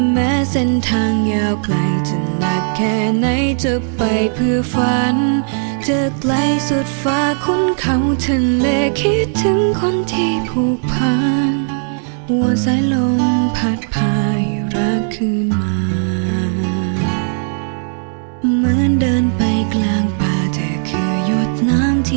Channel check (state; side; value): silent; left; 65 dB below the other